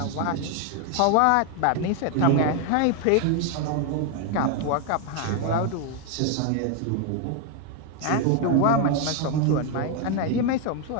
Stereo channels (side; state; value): both; different; correlation 0.01